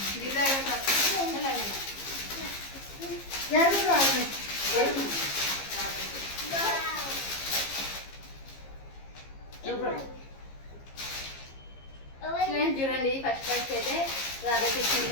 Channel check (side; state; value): right; late; 15 ms